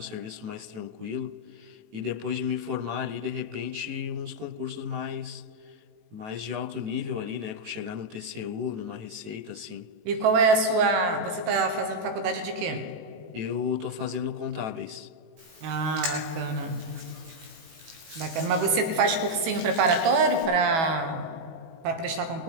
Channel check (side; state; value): left; late; 18 ms